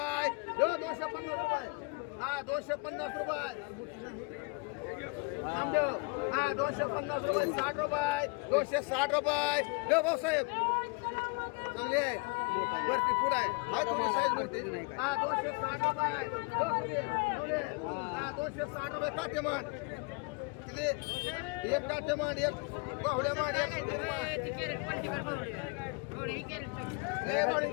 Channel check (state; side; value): quieter; right; 30.5 dB